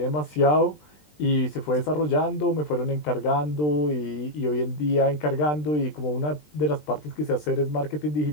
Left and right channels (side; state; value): right; late; 20 ms